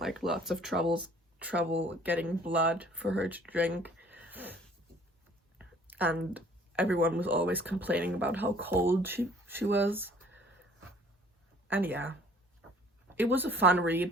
lots of trouble getting blood for her to drink, and everyone was always complaining about how cold she was. And yeah, it was a fun read,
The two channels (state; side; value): normal; both; correlation 0.55